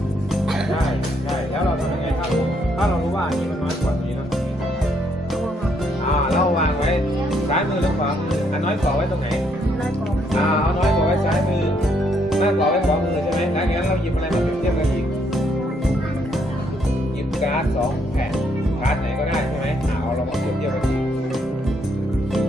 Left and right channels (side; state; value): both; normal; correlation 0.72